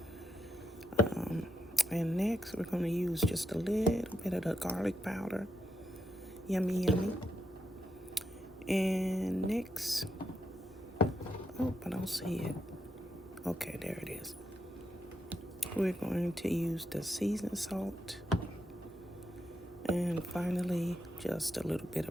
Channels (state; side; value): normal; both; correlation 0.83